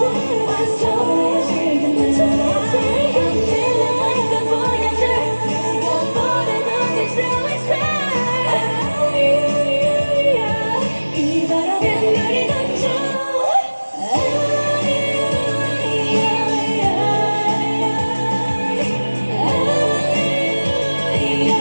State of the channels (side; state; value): both; inverted; correlation -1.00